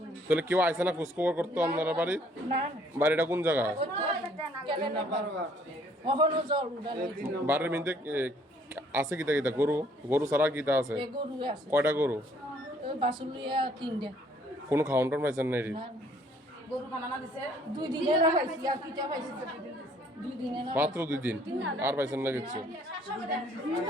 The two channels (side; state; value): both; normal; correlation 0.62